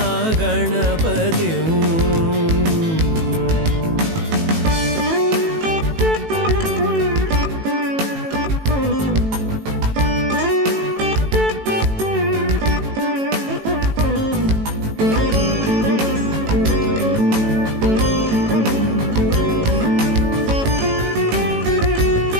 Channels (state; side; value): late; left; 18 ms